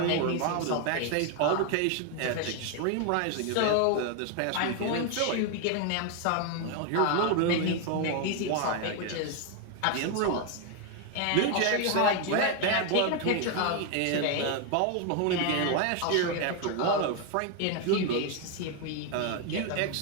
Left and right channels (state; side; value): different; both; correlation 0.01